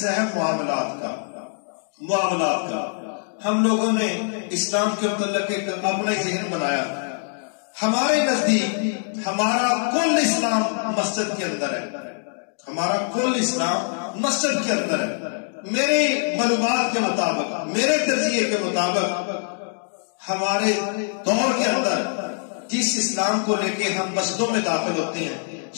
ہے معاملات کا۔ معاملات کا ہم لوگوں نے اسلام کے متعلق ایک اپنا ذہن بنایا۔ ہمارے نزدیک ہمارا کل اسلام مسجد کے اندر ہے، ہمارا کل اسلام مسجد کے اندر ہے۔ میرے معلومات کے مطابق، میرے تجزیے کے مطابق، ہمارے دور کے اندر جس اسلام کو لے کے ہم مسجدوں میں داخل ہوتے ہیں،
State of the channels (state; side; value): silent; right; 60 dB below the other